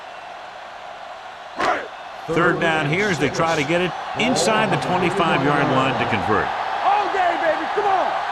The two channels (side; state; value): both; identical; correlation 1.00